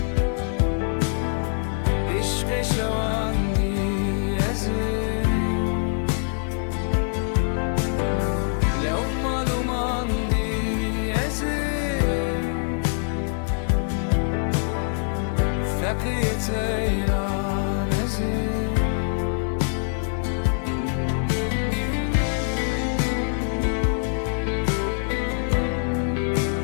عشق شواندی ازیم لو معلوماندی ازیم فقیت ایران ازیم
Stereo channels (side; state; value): right; silent; 60 dB below the other